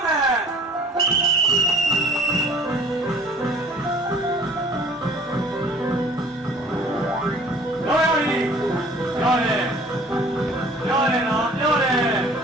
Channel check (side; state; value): both; normal; correlation 0.51